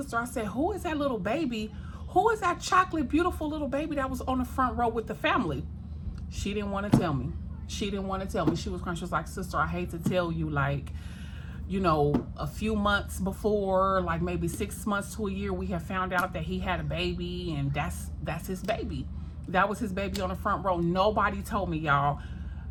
I said, who is that little baby? Who is that chocolate, beautiful little baby that was on the front row with the family? She didn't want to tell me. She didn't want to tell me. She was crying. She was like, sister, I hate to tell you, like, a few months before, like maybe 6 months to a year, we have found out that he had a baby, and that's his baby. That was his baby on the front row. Nobody told me, y'all.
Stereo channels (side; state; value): both; identical; correlation 1.00